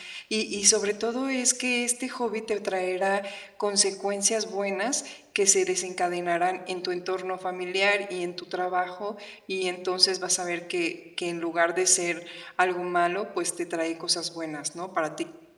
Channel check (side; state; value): both; identical; correlation 1.00